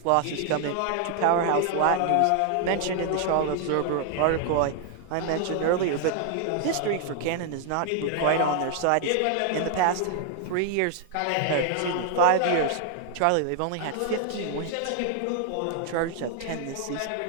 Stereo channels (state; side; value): different; both; correlation 0.00